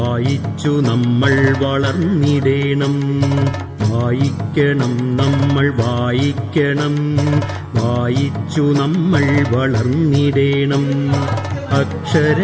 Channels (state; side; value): identical; both; correlation 1.00